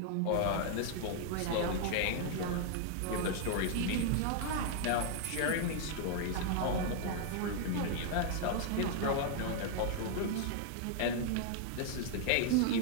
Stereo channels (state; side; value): different; both; correlation -0.01